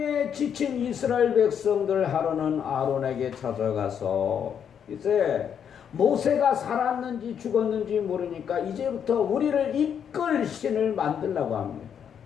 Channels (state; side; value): quieter; right; 8.1 dB